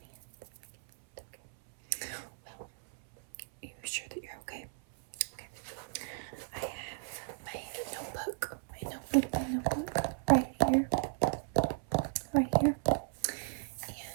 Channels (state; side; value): silent; left; 54 dB below the other